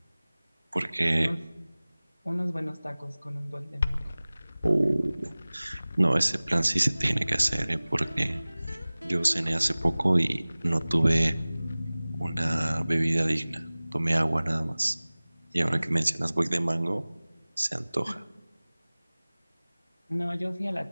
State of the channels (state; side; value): inverted; both; correlation -0.99